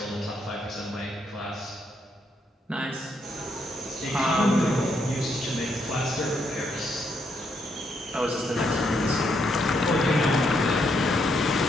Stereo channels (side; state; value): both; normal; correlation 0.76